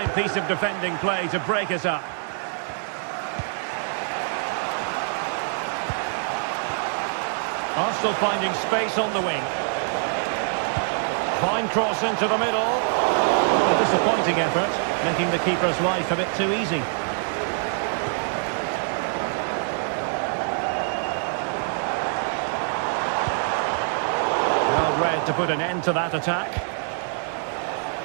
piece of defending play to break us up. Arsenal finding space on the wing. Fine cross into the middle. A disappointing effort, making the keeper's life a bit too easy. Well read to put an end to that attack.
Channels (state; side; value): silent; left; 62 dB below the other